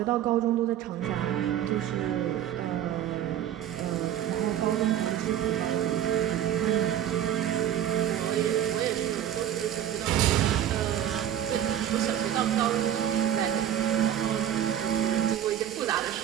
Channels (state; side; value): quieter; left; 10.7 dB